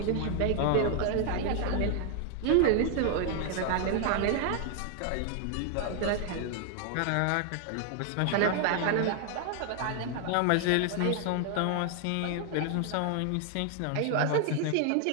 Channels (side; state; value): both; different; correlation 0.00